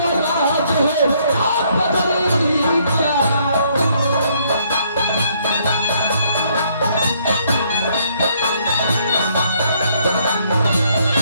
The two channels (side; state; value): both; inverted; correlation -0.68